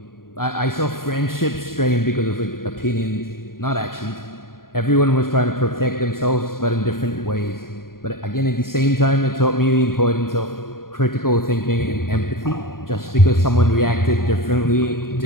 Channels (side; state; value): right; late; 0.91 ms